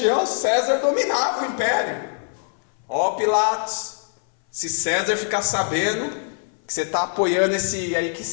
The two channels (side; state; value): right; silent; 60 dB below the other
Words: César dominava o império. Ó Pilatos, se César ficar sabendo que você está apoiando esse aí que